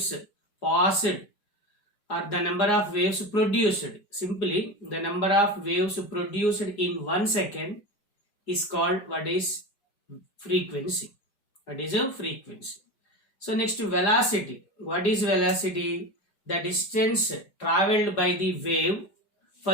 passed, or the number of waves produced. Simply the number of waves produced in 1 second is called what is frequency. What is a frequency? So next, velocity. What is velocity? The distance traveled by the wave for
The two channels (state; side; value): late; right; 4.9 ms